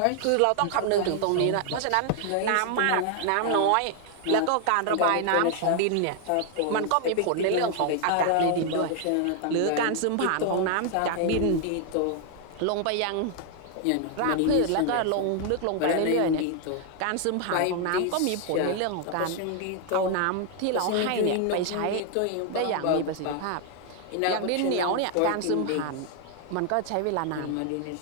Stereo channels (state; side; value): different; both; correlation 0.00